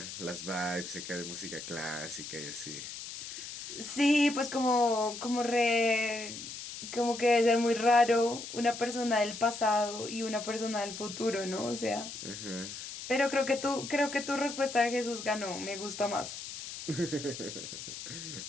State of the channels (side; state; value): left; noise; hiss, 9 dB below the sound